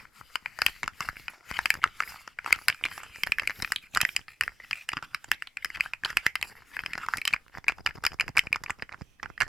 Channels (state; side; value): normal; both; correlation 0.89